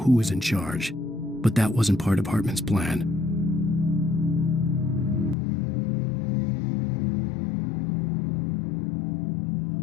was in charge. But that wasn't part of Hartman's plan.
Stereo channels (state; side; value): drops out; right; at 5.4 s